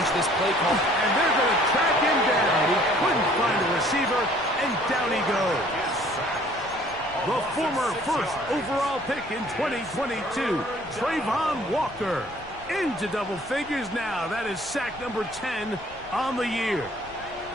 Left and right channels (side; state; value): left; noise; rumble, 21 dB below the sound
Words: this play call? And they're going to track him down. He couldn't find a receiver, and down he goes. The former first overall pick in 2022, Trayvon Walker, into double figures now. That is sack number 10 on the year.